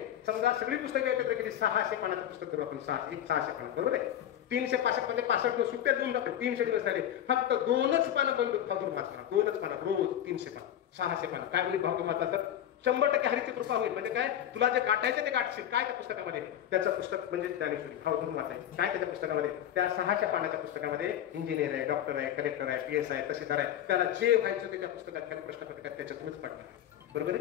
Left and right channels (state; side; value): quieter; right; 11.0 dB